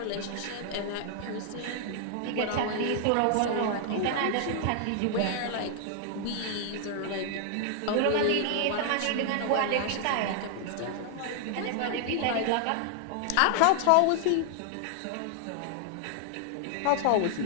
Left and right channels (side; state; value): both; different; correlation 0.00